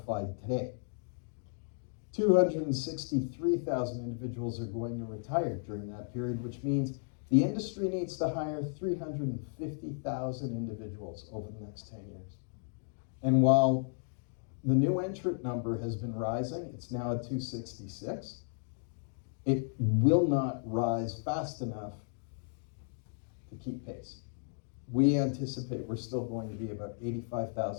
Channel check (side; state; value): right; silent; digital silence